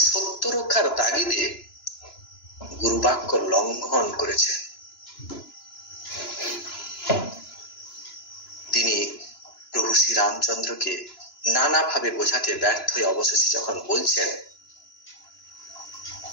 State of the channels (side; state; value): right; late; 2.9 ms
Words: সত্য রক্ষার তাগিদে গুরুবাক্য লঙ্ঘন করেছেন। তিনি প্রভু শ্রী রামচন্দ্রকে নানাভাবে বোঝাতে ব্যর্থ হয়ে অবশেষে যখন বলছেন,